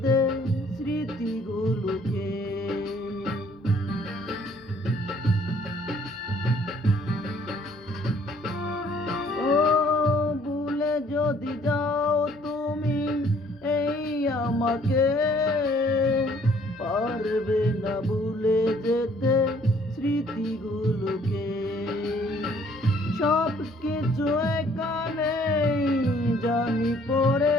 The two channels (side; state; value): both; normal; correlation 0.60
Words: স্মৃতিগুলোকে। ও ভুলে যদি যাও তুমি এই আমাকে, পারবে না ভুলে যেতে স্মৃতিগুলোকে। সব কিছু এখানে জানি পড়ে